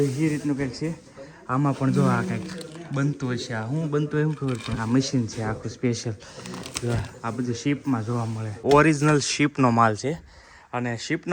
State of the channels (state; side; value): identical; both; correlation 1.00